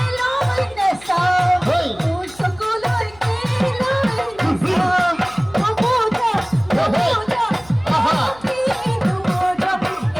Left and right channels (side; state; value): left; noise; hum, 24 dB below the sound